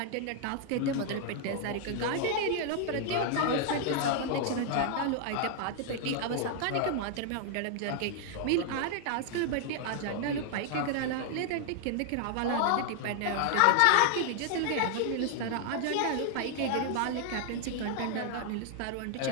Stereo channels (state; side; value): different; both; correlation 0.00